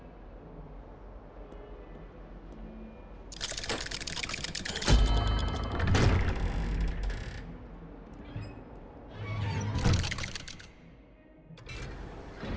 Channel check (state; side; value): identical; both; correlation 1.00